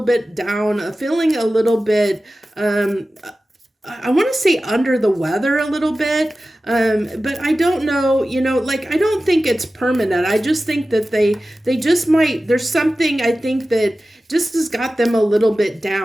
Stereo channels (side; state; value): both; normal; correlation 0.95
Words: down, feeling a little bit I want to say under the weather a little bit, but I don't know, I don't think it's permanent. I just think that they just might, there's something I think that just has got them a little bit